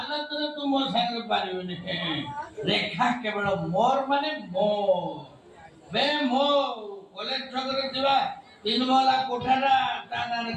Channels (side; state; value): both; identical; correlation 1.00